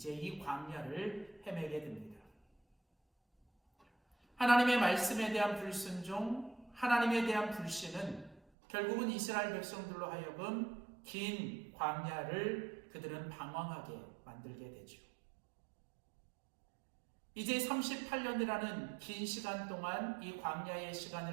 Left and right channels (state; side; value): drops out; left; at 8.4 s